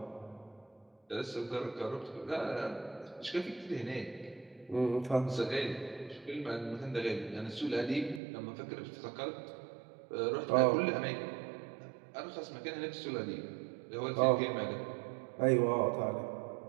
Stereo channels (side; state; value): left; drops out; at 8.2 s